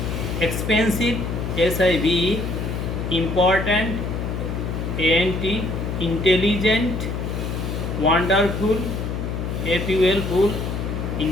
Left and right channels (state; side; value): noise; left; hum, 3 dB below the sound